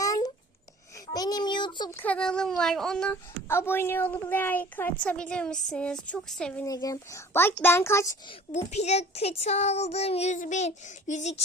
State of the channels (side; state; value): both; normal; correlation 0.47